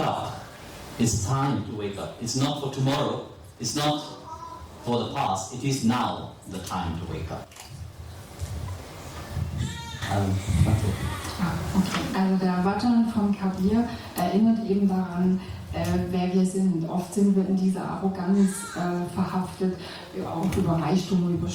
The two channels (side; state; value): both; identical; correlation 1.00